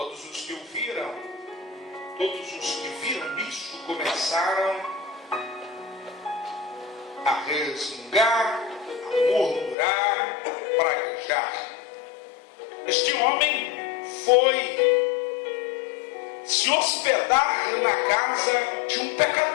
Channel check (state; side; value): drops out; right; at 9.8 s